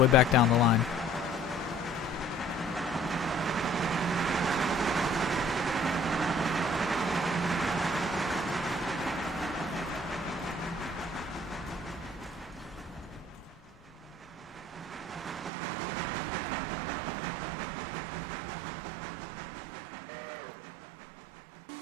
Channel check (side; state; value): left; drops out; at 15.5 s